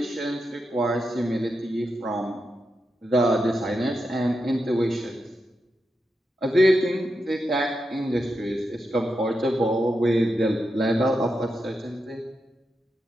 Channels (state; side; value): normal; both; correlation 0.87